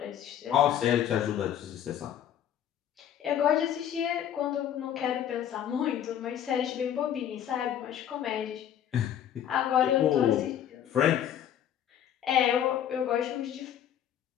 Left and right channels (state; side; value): quieter; right; 10.2 dB